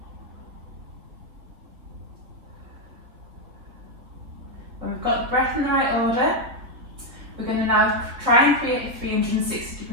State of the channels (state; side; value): late; left; 4.0 ms